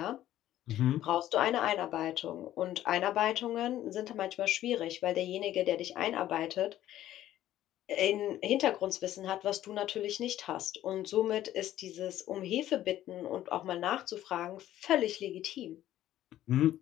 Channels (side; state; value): right; quieter; 13.1 dB